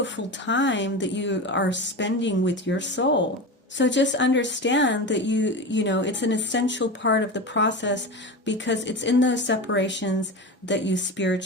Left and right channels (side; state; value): both; normal; correlation 0.25